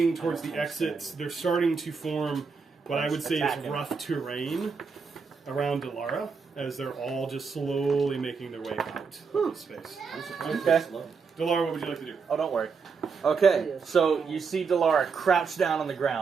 towards the exits. They're starting to form what I would say is Attacking. rough terrain around Delara, as they're all just slowly making their way out of the space. Okay. Delara, what would you like to do? Oh, don't worry. Okay, so you see Delara crouch down on the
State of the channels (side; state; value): left; quieter; 5.3 dB